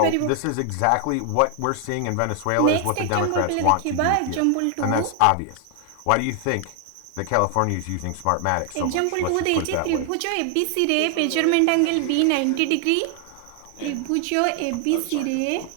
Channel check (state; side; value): different; both; correlation 0.00